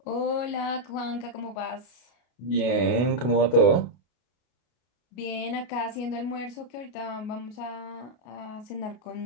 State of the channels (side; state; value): right; late; 33 ms